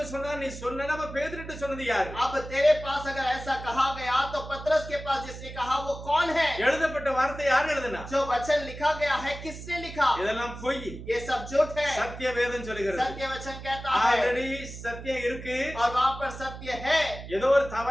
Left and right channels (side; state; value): right; noise; hum, 12 dB below the sound